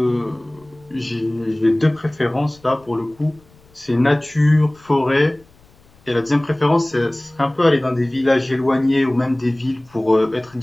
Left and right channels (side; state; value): left; noise; rumble, 29 dB below the sound